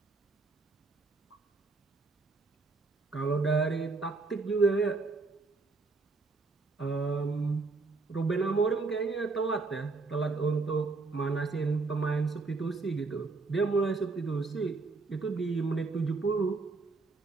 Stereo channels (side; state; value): left; quieter; 3.9 dB